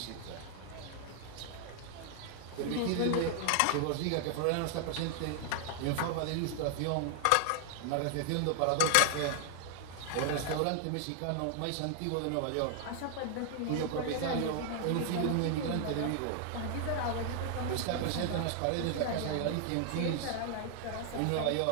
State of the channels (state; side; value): different; both; correlation 0.00